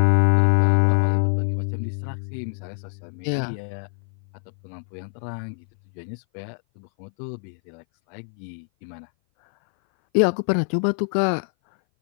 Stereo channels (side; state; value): right; silent; 58 dB below the other